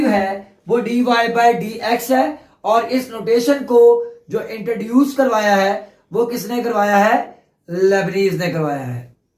है वो dy बाय डी एक्स है। और इस नोटेशन को जो इंट्रोड्यूस करवाया है वो किसने करवाया है? लेबनीज ने करवाया है।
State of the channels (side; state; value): both; identical; correlation 1.00